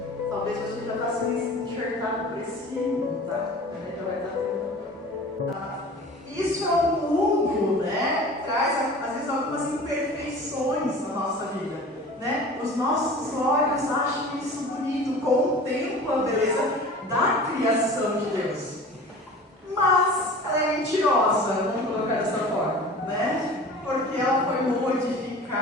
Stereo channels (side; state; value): both; normal; correlation 0.40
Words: Talvez você já está sendo enxertado por esse mundo, tá? Já vai estar tendo. Isso é um mundo, né? Traz, às vezes, algumas imperfeições na nossa vida, né? Os nossos olhos acham isso bonito, contemplam a beleza da criação de Deus. Mas ela é mentirosa, vamos colocar dessa forma, né? Porque ela foi